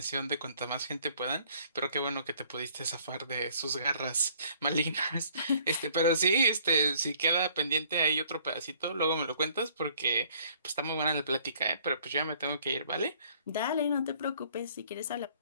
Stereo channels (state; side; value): inverted; both; correlation -0.59